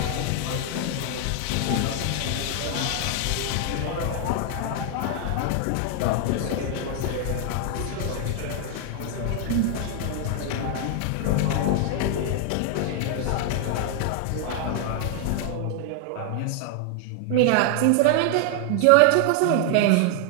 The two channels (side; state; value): both; different; correlation 0.00